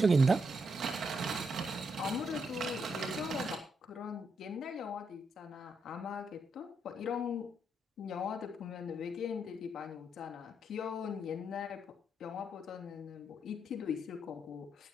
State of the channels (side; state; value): both; normal; correlation 0.79